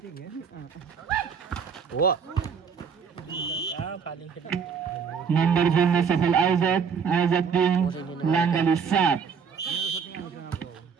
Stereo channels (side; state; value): left; quieter; 6.4 dB